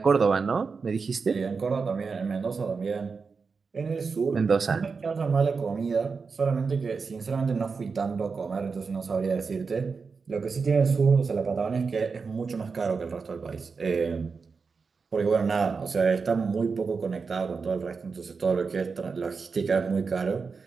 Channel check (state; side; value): quieter; left; 5.0 dB